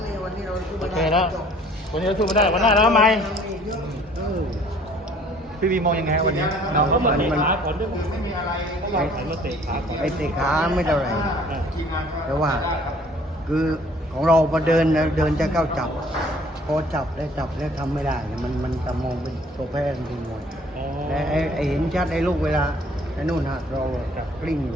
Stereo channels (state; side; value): normal; both; correlation 0.56